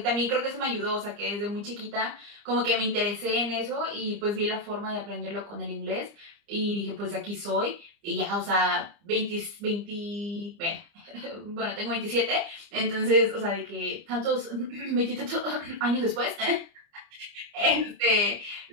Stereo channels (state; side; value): late; left; 30 ms